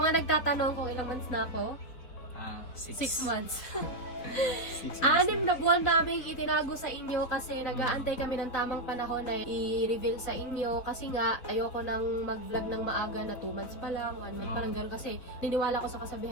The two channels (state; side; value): late; right; 4.0 ms